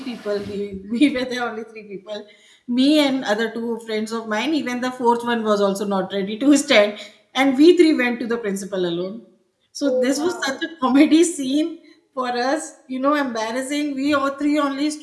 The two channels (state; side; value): identical; both; correlation 1.00